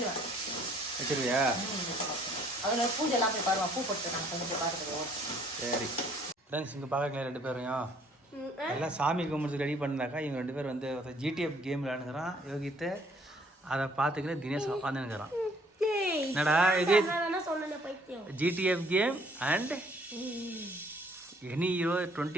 வச்சிருவியா? அதில் பூஜைலாம் போய் பாருவான். பூ போட்டு நான் கொஞ்சம் போய் பார்த்துக்குவோம். சரி ஃப்ரெண்ட்ஸ், இங்கே பார்க்கல 2 பேரையும் எல்லாம் சாமி கும்பிட்டு ரெடி பண்ணாக்கா இவங்க 2 பேர் வந்து ஜிடிஎஃப் கேம் விளையாடுங்கிறான் யோகித்து. அதை பார்த்துக்கிற தினேஷ் உட்காந்துங்கிறான். என்னடா இது? GTF game and any hero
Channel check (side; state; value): both; normal; correlation 0.61